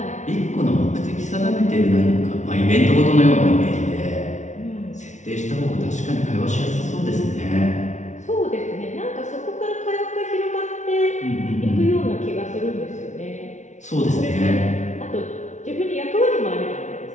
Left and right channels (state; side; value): late; right; 0.35 ms